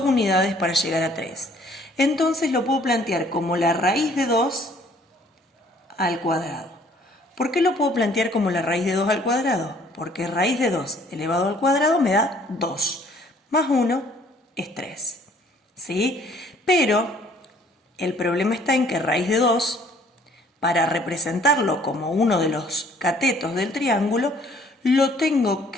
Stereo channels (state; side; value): normal; both; correlation 0.59